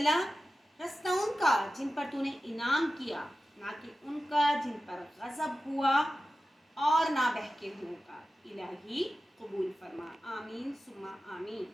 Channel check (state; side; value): normal; both; correlation 0.94